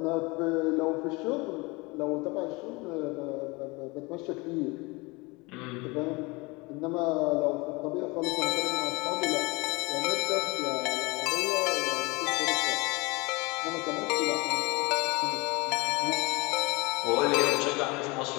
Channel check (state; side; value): quieter; right; 25.6 dB